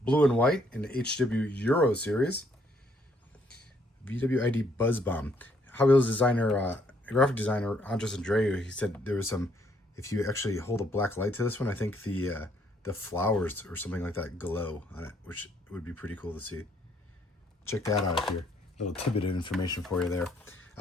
blue and white in the HW Euro series. VW ID Buzz Bomb. Hot Wheels designer, graphic designer Andres Andreu, he said there was some, if you actually hold a black light to this one, I think the flowers or something like that glow on it, which would be pretty cool to see. check that out if you're a little tidbit of information for you there.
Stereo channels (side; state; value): both; normal; correlation 0.68